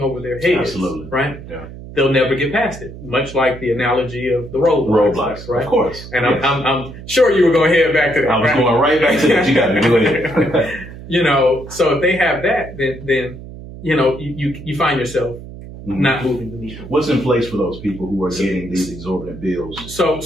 over their heads, absolutely, right? Yeah. They'll never get past it, much like the analogy of the roadblocks, right? Of course. And yes. I'm sure you were going to head back to that. I was going right back to that. You got to do it. So if they have that, then you find yourself not moving the needle. What's in place for those people who are getting these exorbitant bills?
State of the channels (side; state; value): right; noise; hum, 14 dB below the sound